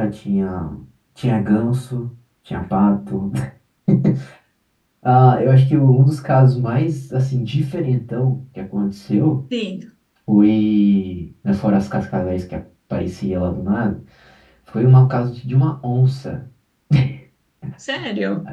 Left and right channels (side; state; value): both; identical; correlation 1.00